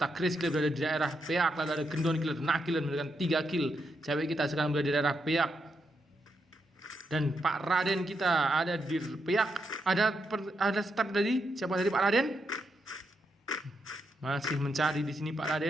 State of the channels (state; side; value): normal; both; correlation 0.82